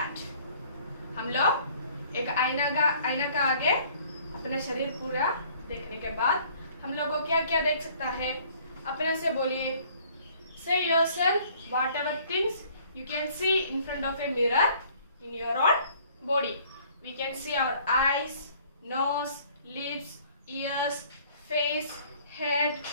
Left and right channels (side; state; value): both; inverted; correlation -0.57